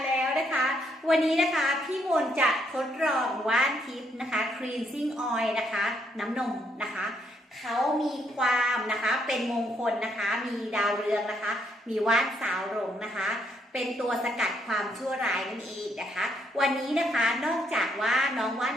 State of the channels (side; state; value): both; normal; correlation 0.73